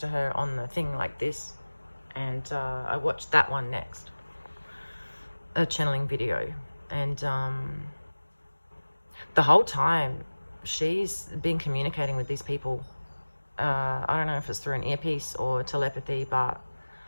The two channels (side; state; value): both; inverted; correlation -1.00